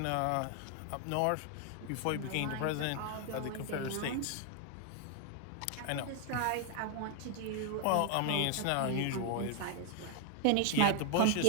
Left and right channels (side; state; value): both; different; correlation 0.00